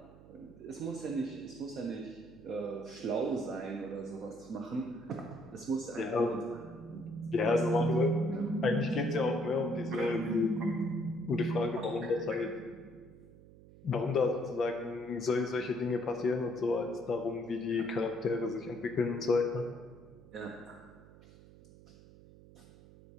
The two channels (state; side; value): noise; right; hum, 21 dB below the sound